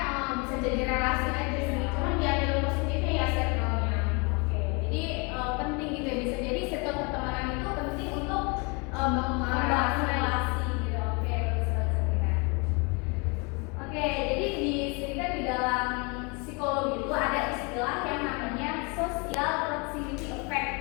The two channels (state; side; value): quieter; right; 31.0 dB